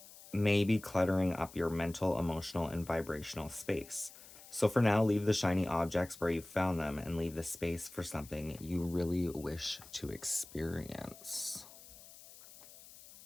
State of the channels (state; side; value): noise; left; hiss, 19 dB below the sound